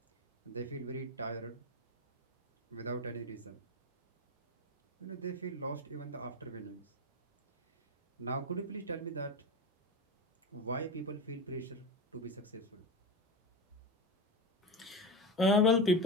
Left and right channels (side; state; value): both; normal; correlation 0.22